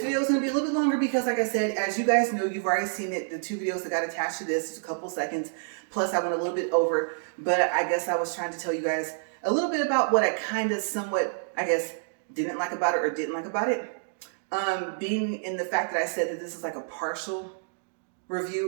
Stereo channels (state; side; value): silent; left; digital silence